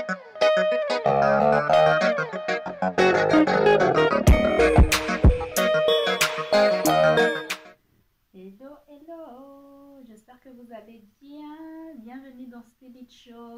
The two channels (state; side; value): identical; both; correlation 1.00